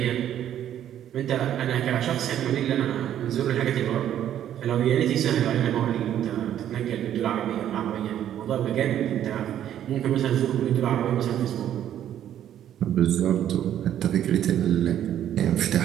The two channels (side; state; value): left; quieter; 10.8 dB